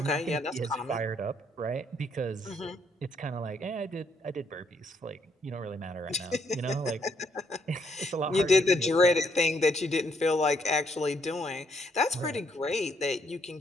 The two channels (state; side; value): normal; both; correlation 0.71